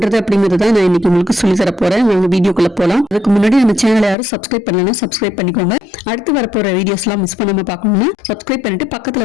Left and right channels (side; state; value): right; drops out; at 4.2 s